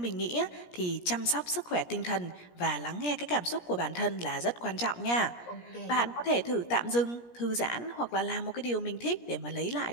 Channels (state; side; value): late; right; 17 ms